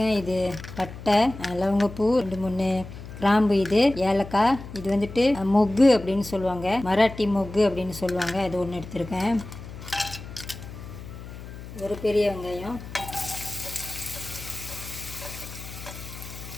இது பட்டை, லவங்கப்பூ, 2-3 கிராம்பு, இது ஏலக்காய், இது வந்துட்டு மொக்கு அப்படின்னு சொல்லுவாங்க, மராட்டி மொக்கு அப்படின்னு சொல்லுவாங்க. அது ஒன்று எடுத்திருக்கேன். ஒரு பெரிய வெங்காயம்,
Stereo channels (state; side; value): noise; left; hum, 13 dB below the sound